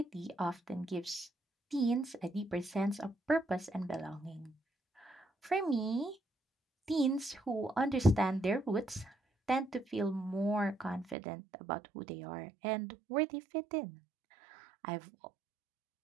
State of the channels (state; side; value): drops out; left; at 11.2 s